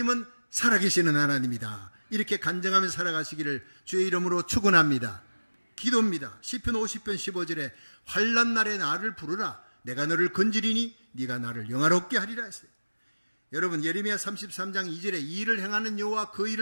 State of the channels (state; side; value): inverted; both; correlation -1.00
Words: 살아계시는 하나님이다. 이렇게 간증하면서 살아가시기를 주의 이름으로 축원합니다. 기도입니다. 시편 50편 15절에 환난 날에 나를 부르라. 내가 너를 건지리니 네가 나를 영화롭게 하리라 했어요. 여러분, 예레미야 33장 2절에 이 일을 행하는 여호와, 그